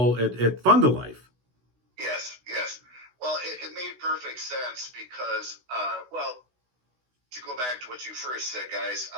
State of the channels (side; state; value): left; late; 16 ms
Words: at Fund a Life. Yes. Well, it made perfect sense because, to go back to what you first said, guys,